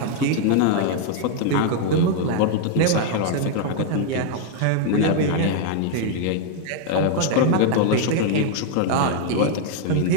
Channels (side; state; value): both; different; correlation 0.00